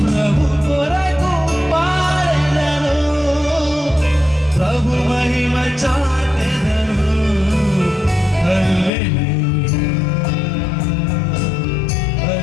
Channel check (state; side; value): drops out; right; at 8.9 s